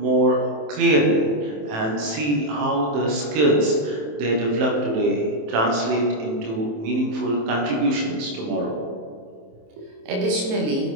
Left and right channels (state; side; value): late; left; 27 ms